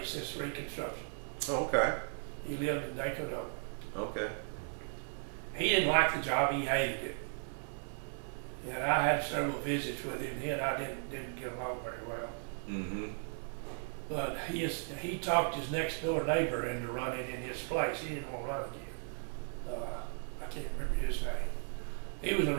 since Reconstruction. Okay. He lived in Dakota. Okay. He didn't like the job. He hated it. And I had several visits with him. He and I didn't get along very well. Mm-hmm. But he talked his next door neighbor into running in his place. He didn't want to run again. I can't remember his name. He was a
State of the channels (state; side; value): silent; left; 54 dB below the other